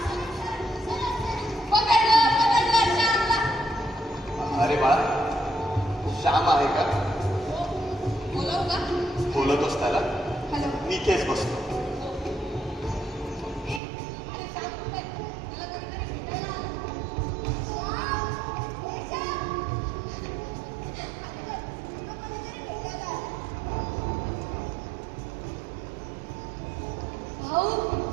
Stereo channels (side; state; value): left; drops out; at 13.8 s